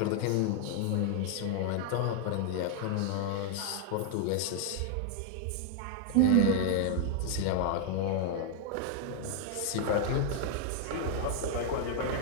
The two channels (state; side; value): different; both; correlation 0.00